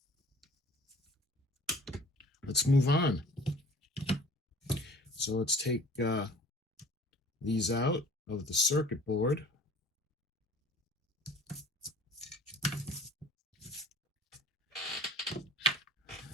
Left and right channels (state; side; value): normal; both; correlation 0.48